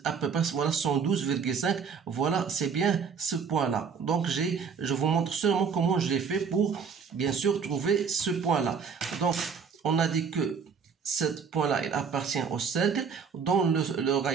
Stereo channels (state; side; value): quieter; left; 6.2 dB